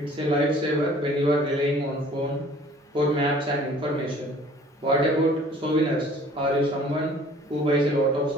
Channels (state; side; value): normal; both; correlation 0.52